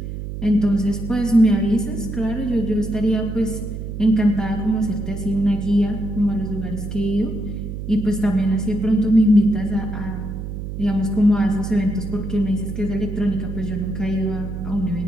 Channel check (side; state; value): right; noise; hum, 7 dB below the sound